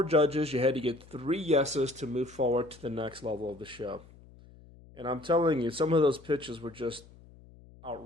judges, you had to get 3 yeses to move forward to the next level of the show. And I'm telling you, some of those pitches were just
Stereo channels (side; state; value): left; noise; hum, 23 dB below the sound